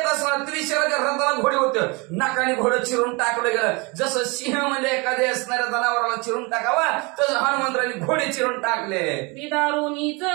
असणार त्रिशराच्या रथाला घोडे होते. नाकाने घोडं चिरून टाकलं गेलं. जसं सिंह म्हणजे एखाद्या असणाऱ्या जनावराला चिरून टाकावा तसं हनुमंतराने घोडे चिरून टाकले. दारुनीच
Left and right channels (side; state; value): left; quieter; 28.1 dB